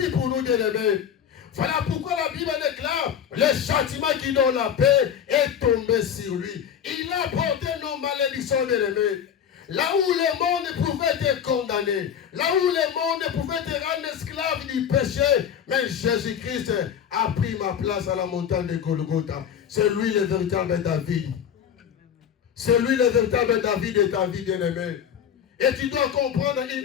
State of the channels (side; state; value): right; quieter; 8.4 dB